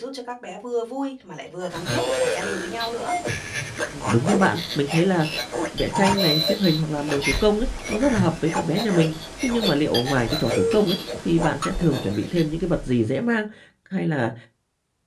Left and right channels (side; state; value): both; identical; correlation 1.00